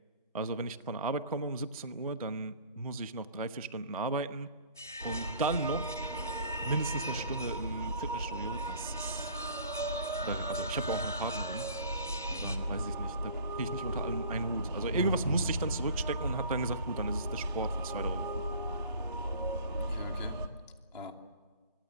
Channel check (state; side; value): inverted; both; correlation -0.48